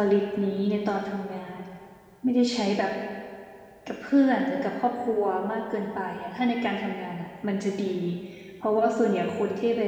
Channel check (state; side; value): identical; both; correlation 1.00